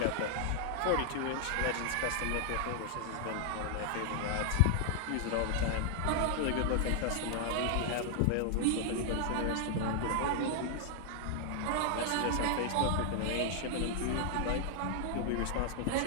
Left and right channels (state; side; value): different; both; correlation 0.00